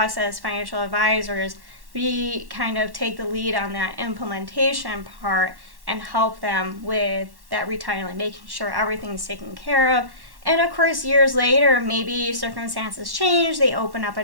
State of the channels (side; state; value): left; late; 1.1 ms